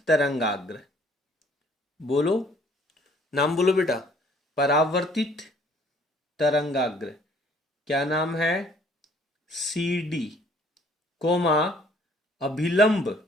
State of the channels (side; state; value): both; normal; correlation 0.59